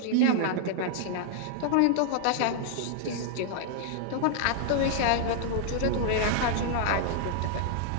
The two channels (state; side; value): different; both; correlation -0.01